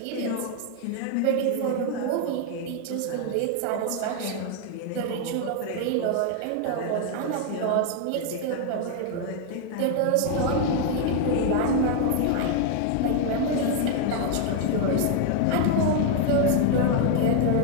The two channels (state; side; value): different; both; correlation 0.00